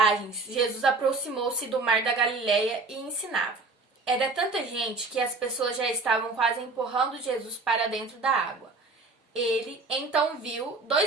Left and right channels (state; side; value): quieter; left; 3.7 dB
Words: Jesus aproximou-se do mar da Galileia e ensinava. Era tanta gente que as pessoas já estavam quase empurrando Jesus para dentro da água. Ele então viu